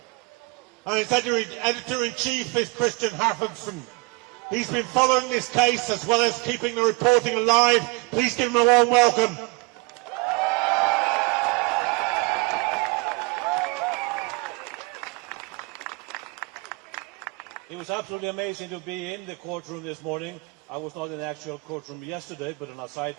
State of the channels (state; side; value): quieter; left; 26.8 dB